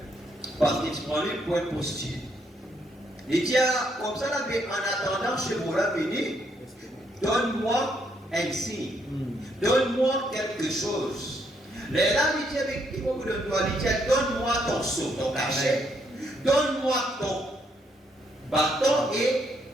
parce qu'il se prend lui pour un prostitué. Il dit, comme ça, là, mais en attendant, chez vous, là, venez, donne-moi un signe, donne-moi quelque chose. Les là, il dit, avec qui vous le doigt, il dit, donne-moi ton seau, ton cachet, donne-moi ton bâton et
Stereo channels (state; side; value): normal; both; correlation 0.73